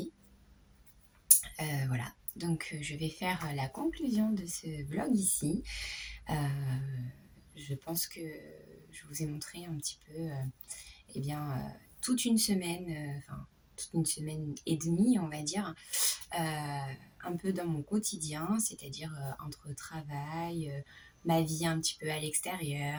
Voilà, donc je vais faire la conclusion de ce vlog ici. Euh, je pense que je vous ai montré un petit peu, eh bien, toute une semaine, enfin, toute une semaine et demie, on va dire, un peu dans mon quotidien, c'est-à-dire entre travail, ma vie un petit peu à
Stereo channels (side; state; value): both; identical; correlation 1.00